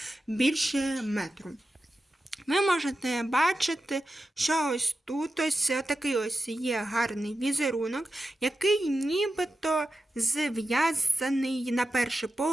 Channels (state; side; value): normal; both; correlation 0.91